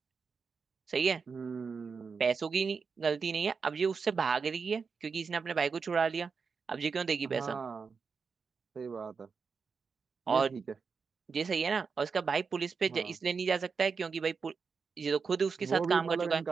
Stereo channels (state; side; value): quieter; left; 5.3 dB